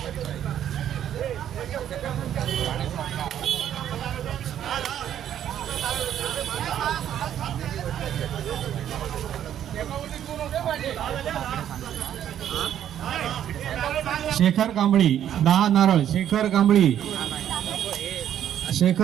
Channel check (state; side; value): quieter; left; 10.4 dB